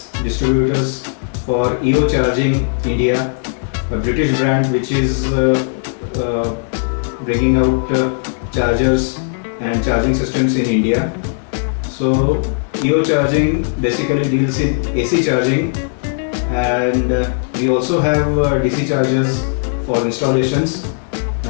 distributors for EO Charging India, a British brand which is bringing out chargers and charging systems in India. So EO Charging basically deals in AC charging, and we also have DC chargers for installations,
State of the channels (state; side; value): silent; right; digital silence